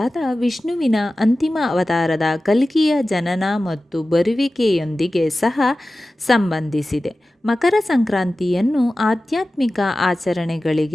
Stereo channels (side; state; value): both; normal; correlation 0.95